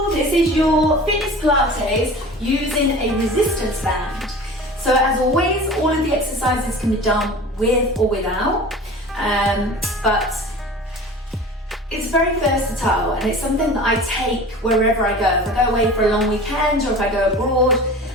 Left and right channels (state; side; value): normal; both; correlation 0.38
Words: this is your fitness Pilates using a resistance band. So as always, all of the exercises can be done with or without, but it's very versatile and it's something that I take wherever I go. If I go away for a long weekend or if I go abroad